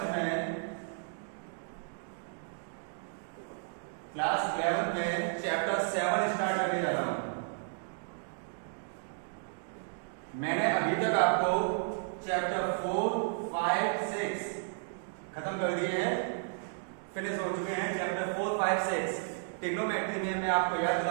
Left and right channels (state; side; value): silent; left; digital silence